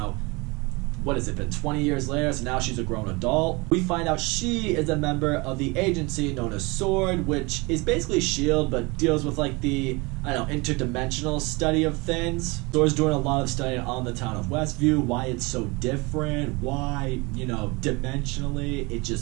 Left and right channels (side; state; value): left; quieter; 26.3 dB